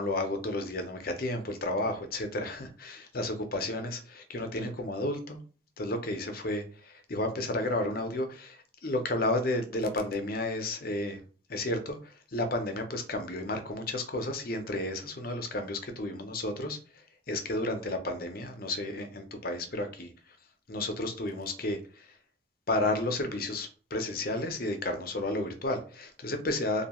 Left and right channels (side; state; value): both; normal; correlation 0.22